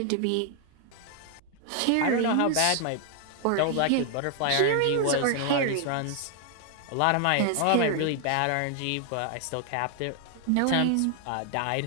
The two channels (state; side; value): different; both; correlation 0.00